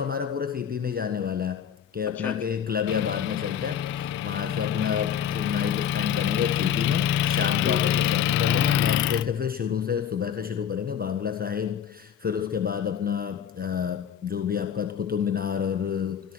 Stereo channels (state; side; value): quieter; right; 8.7 dB